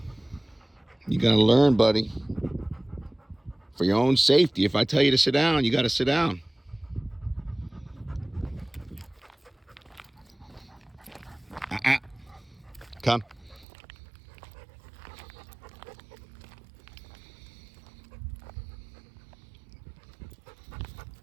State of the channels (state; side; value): drops out; left; at 13.7 s